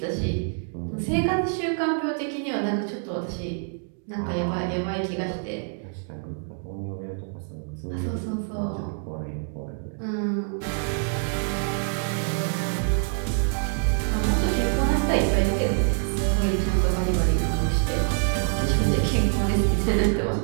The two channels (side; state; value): left; silent; 55 dB below the other